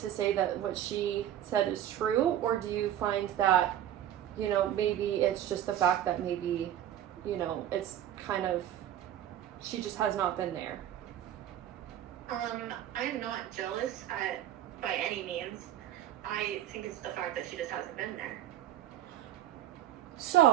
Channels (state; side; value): quieter; left; 11.5 dB